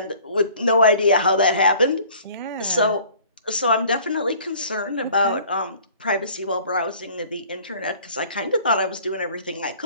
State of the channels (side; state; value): both; inverted; correlation -0.51